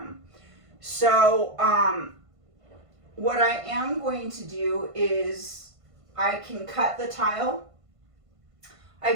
So, what I am going to do is I can cut the tile. I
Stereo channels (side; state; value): left; late; 1.5 ms